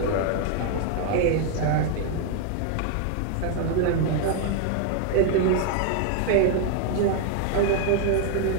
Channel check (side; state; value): both; different; correlation 0.00